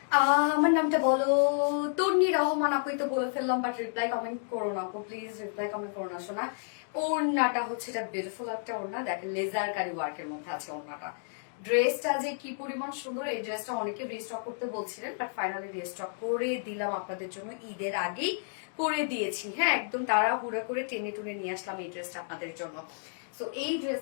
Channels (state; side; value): silent; right; digital silence